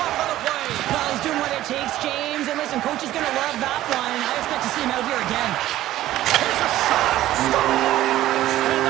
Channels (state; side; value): quieter; left; 14.4 dB